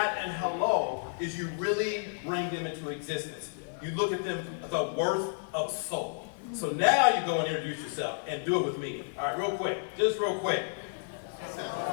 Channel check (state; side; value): silent; right; 57 dB below the other